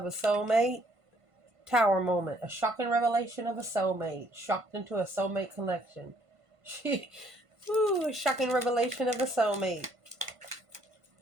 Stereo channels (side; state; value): left; late; 1.5 ms